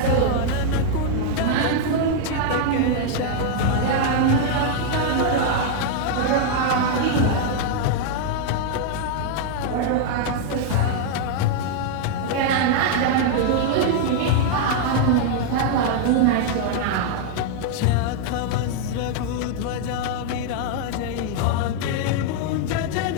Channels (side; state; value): both; different; correlation 0.00